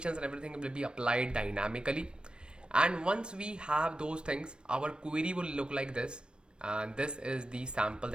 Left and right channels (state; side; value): late; left; 0.054 ms